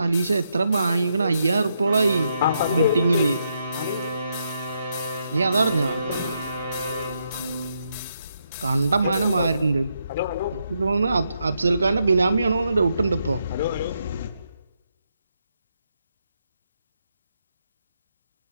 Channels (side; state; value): both; inverted; correlation -0.79